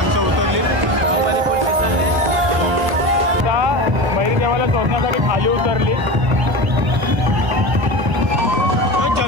देवाला शोधण्यासाठी खाली उतरली.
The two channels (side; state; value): left; late; 1.0 ms